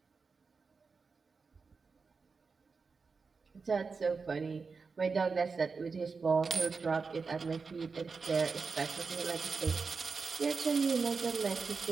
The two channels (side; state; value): left; quieter; 4.8 dB